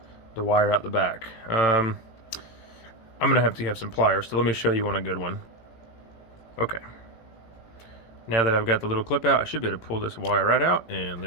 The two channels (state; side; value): late; right; 17 ms